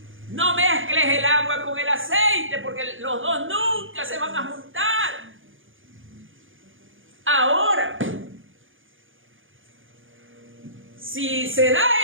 No mezcles el agua con el aceite, porque los dos nunca se van a juntar. Ahora, si se da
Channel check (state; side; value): late; left; 0.58 ms